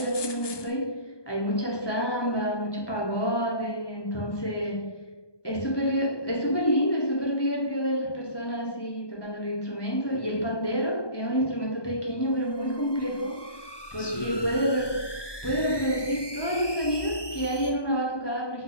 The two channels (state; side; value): late; right; 1.2 ms